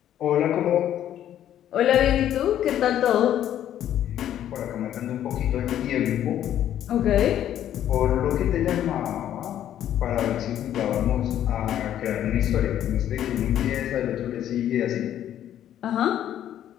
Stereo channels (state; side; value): quieter; right; 11.1 dB